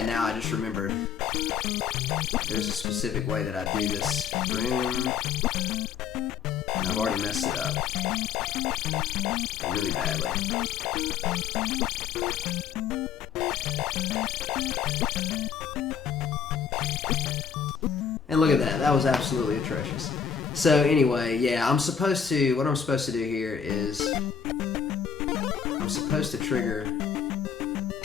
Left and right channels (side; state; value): right; quieter; 7.3 dB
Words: now I just remembered there's a specific way that I do this room, and I've already messed it up really badly. And look at that, that was absolutely atrocious. So anyway, yeah, what I'm supposed to do here is I'm supposed to trigger,